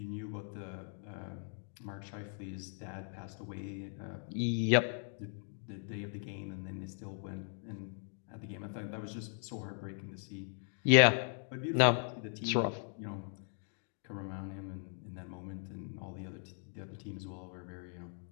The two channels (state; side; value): silent; right; 52 dB below the other